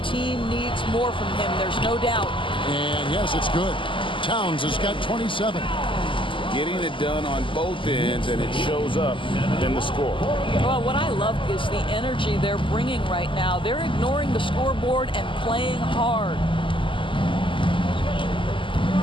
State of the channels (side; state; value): right; late; 0.25 ms